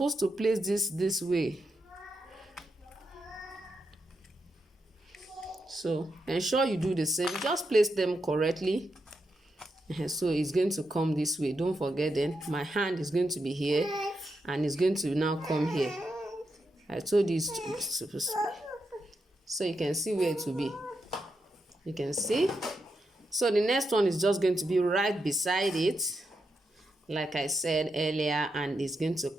to place this way. So ensure you do the same. Just place them correctly. So it's going to come this way. Don't forget, then my hand is going to be here and it's going to now come here. I told you it's supposed to be. So you can see where it will be. You can see. So the next one is just going to be right beside it, like I said earlier, and it's going to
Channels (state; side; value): normal; both; correlation 0.85